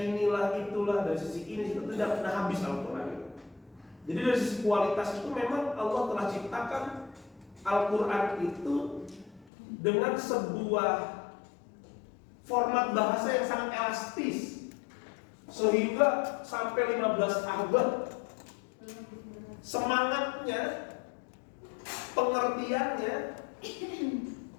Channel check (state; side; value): drops out; right; at 9.5 s